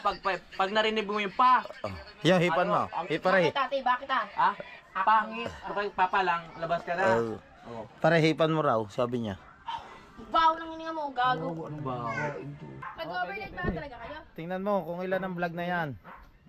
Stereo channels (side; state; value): both; identical; correlation 1.00